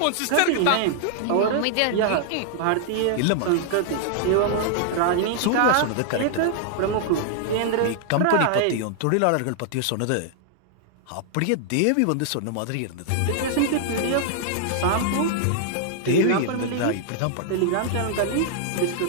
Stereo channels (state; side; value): different; both; correlation 0.00